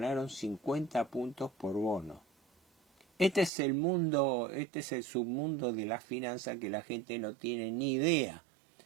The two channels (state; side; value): drops out; left; at 3.5 s